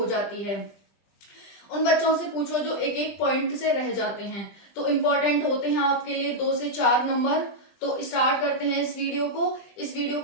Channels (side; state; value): right; late; 20 ms